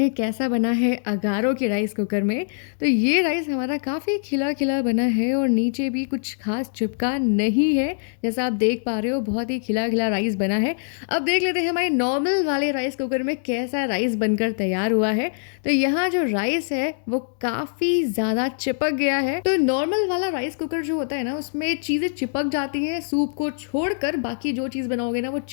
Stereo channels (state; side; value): silent; right; 63 dB below the other